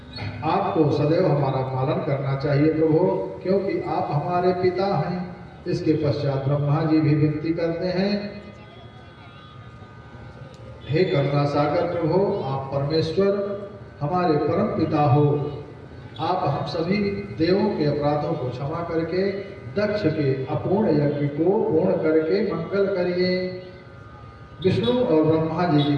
आपको सदैव हमारा पालन करना चाहिए प्रभु, क्योंकि आप हमारे पिता हैं। इसके पश्चात ब्रह्मा जी भी विनती करते हैं, हे करुणा सागर प्रभु, आप परमेश्वर हमारे परम पिता हो। आप हम सभी देवों के अपराधों को क्षमा करके दक्ष के अपूर्ण यज्ञ को पूर्ण करके मंगल करिए। विष्णु और ब्रह्मा जी की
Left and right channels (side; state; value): both; identical; correlation 1.00